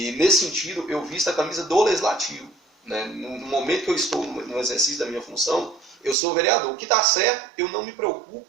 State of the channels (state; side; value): drops out; left; at 6.2 s